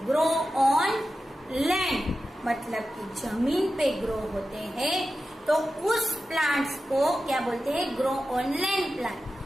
ग्रो ऑन लैंड, मतलब कि जमीन पे ग्रो होते हैं. तो उस प्लांट्स को क्या बोलते हैं? Grow on land plant.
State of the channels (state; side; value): normal; both; correlation 0.92